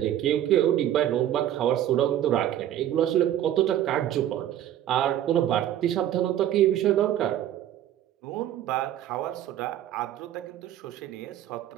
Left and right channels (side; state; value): left; quieter; 11.8 dB